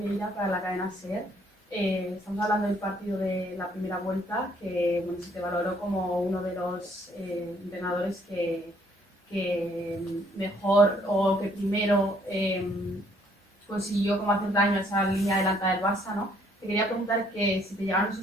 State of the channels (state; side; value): normal; both; correlation 0.65